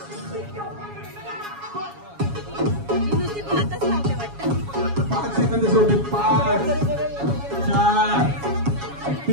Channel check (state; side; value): late; left; 7.2 ms